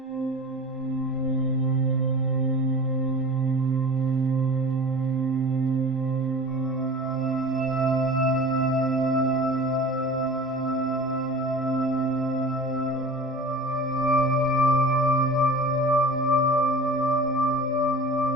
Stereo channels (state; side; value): normal; both; correlation 0.38